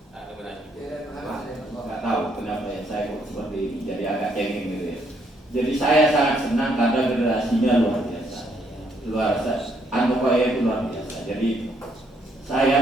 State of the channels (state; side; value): normal; both; correlation 0.72